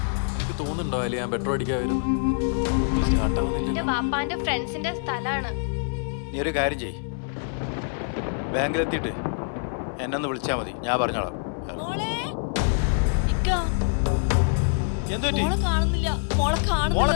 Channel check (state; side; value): silent; right; digital silence